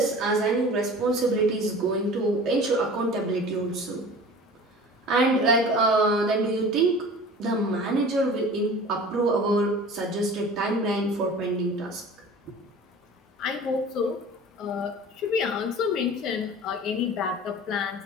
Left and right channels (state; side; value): normal; both; correlation 0.40